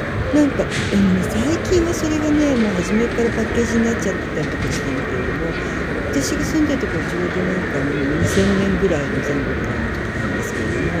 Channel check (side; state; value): both; identical; correlation 1.00